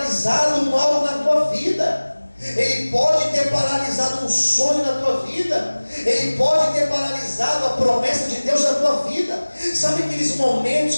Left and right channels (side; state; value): both; inverted; correlation -1.00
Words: algo na tua vida. Ele pode ter paralisado um sonho na tua vida. Ele pode ter paralisado a promessa de Deus na tua vida. Sabe aqueles momentos